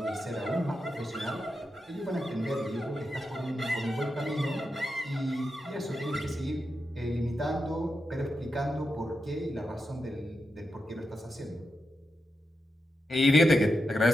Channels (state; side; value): normal; both; correlation 0.87